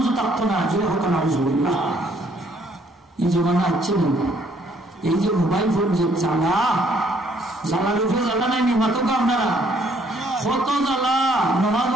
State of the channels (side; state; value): both; normal; correlation 0.65